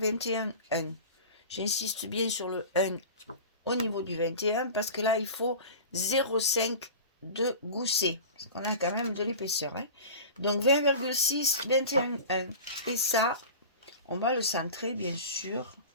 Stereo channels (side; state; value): both; inverted; correlation -0.35